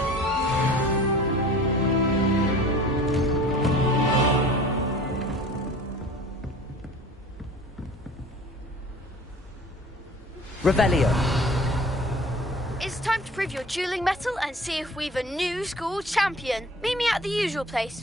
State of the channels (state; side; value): normal; both; correlation 0.44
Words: Revelio. It's time to prove your dueling mettle and see if we've a new school champion. Meet me at the usual place